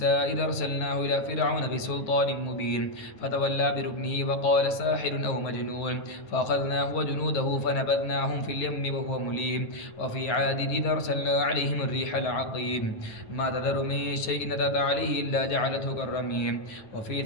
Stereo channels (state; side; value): late; right; 9.7 ms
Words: إذا أرسلناه إلى فرعون بسلطان مبين فتولى بركنه وقال ساحر أو مجنون فأخذناه وجنوده فنبذناهم في اليم وهو مليم. وفي عاد إذا أرسلنا عليهم الريح العقيم ما تذر من شيء أتت عليه إلا جعلته كالرميم. وفي